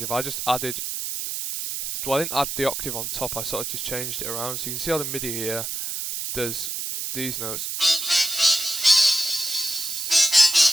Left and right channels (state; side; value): noise; right; hiss, 4 dB below the sound